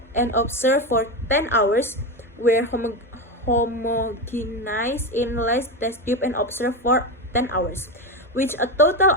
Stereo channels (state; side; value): normal; both; correlation 0.16